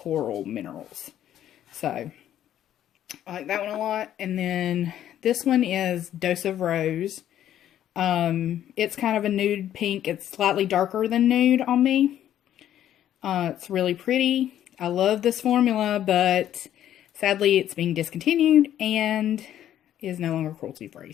Minerals. So I like that one a lot. And then this one is Dose of Rose. It's kind of a nude pink. It's slightly darker than nude on me. It's really pretty. I love this formula, but sadly it's being discontinued and is no longer cruelty free.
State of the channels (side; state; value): right; quieter; 11.3 dB